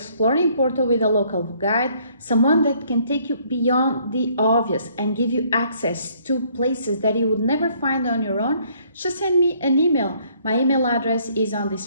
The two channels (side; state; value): both; inverted; correlation -0.64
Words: Porto with a local guide, someone that can take you beyond the obvious and give you access to places that you would never find on your own, just send me an email. My email address is on